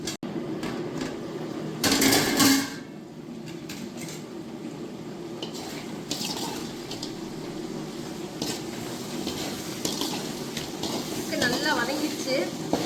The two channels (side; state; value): both; identical; correlation 1.00